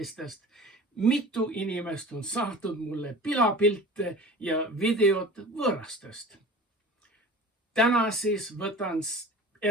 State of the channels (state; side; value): normal; both; correlation 0.39